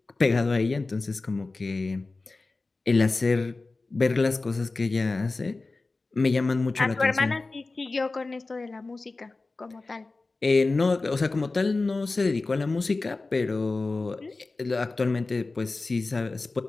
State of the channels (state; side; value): quieter; right; 3.5 dB